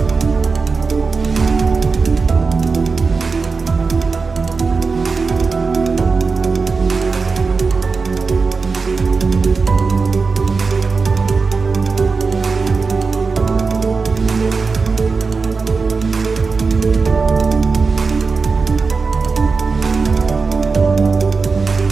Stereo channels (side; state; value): left; quieter; 4.5 dB